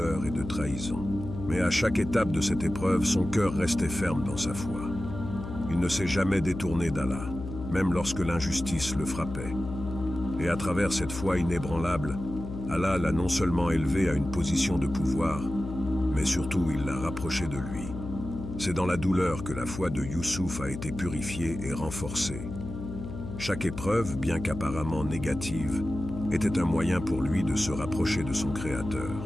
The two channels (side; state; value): left; noise; hum, 8 dB below the sound